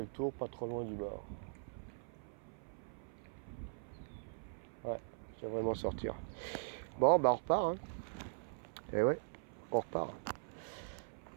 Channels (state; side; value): silent; left; 50 dB below the other